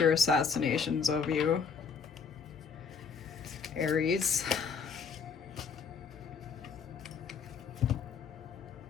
assassinations of you. Aries.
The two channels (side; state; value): right; quieter; 6.1 dB